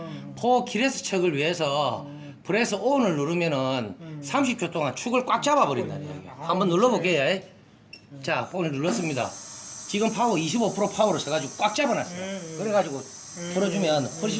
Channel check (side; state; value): both; identical; correlation 1.00